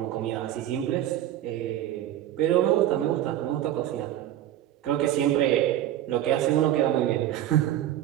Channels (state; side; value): quieter; left; 12.4 dB